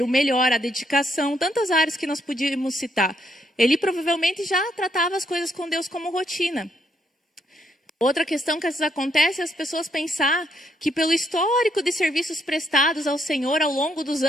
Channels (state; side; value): normal; both; correlation 0.74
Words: o melhor, a dedicação, tantas áreas que nós podíamos citar. Ele provavelmente já tratava as coisas com Deus como rotina. Outra questão que às vezes acontece é as pessoas pensar que pelo histórico de serviços prestados ao Senhor ao longo dos